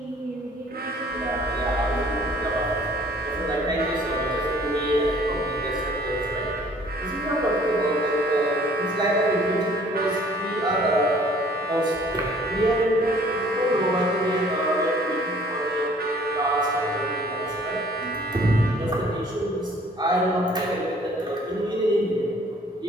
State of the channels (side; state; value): both; normal; correlation 0.56